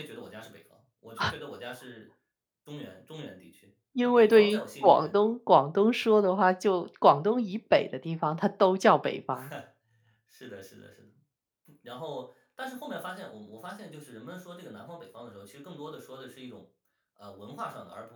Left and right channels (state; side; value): identical; both; correlation 1.00